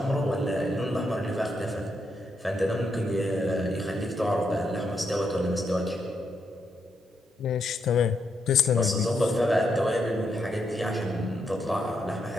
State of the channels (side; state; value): both; normal; correlation 0.80